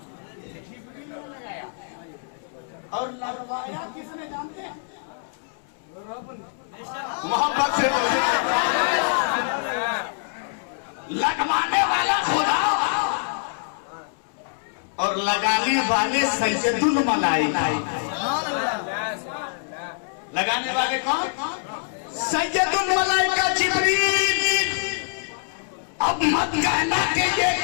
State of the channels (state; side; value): silent; right; 61 dB below the other